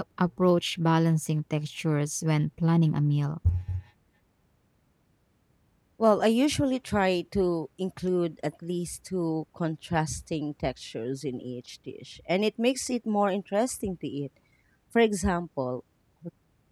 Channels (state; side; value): identical; both; correlation 1.00